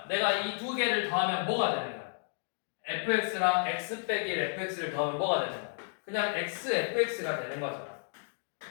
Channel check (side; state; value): right; silent; digital silence